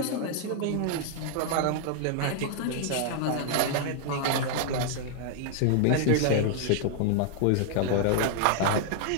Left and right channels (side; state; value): both; different; correlation 0.00